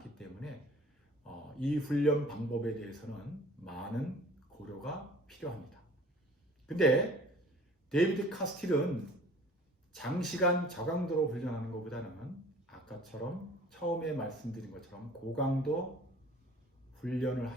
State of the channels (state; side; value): normal; both; correlation 0.49